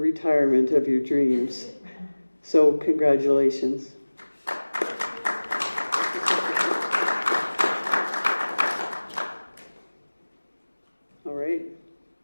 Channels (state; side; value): inverted; both; correlation -1.00